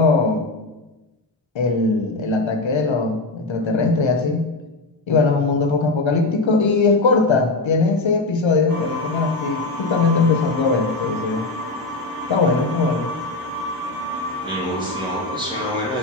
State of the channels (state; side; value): quieter; right; 3.2 dB